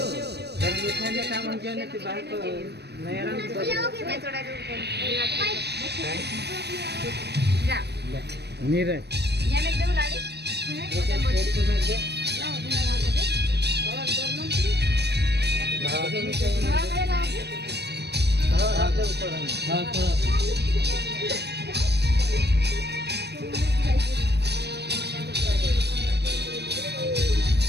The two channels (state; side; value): late; left; 0.48 ms